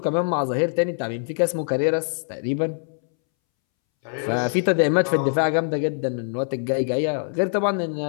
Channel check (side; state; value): right; silent; 63 dB below the other